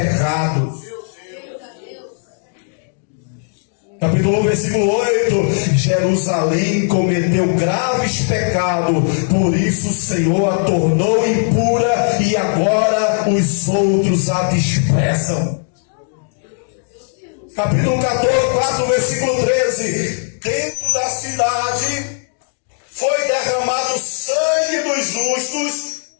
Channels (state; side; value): silent; right; digital silence